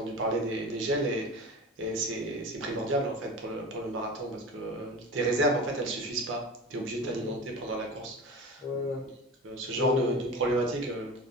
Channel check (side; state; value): both; normal; correlation 0.33